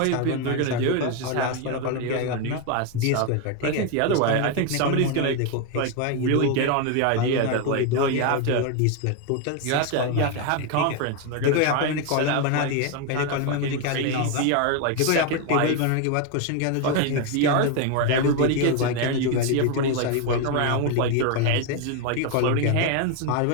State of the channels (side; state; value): both; different; correlation 0.01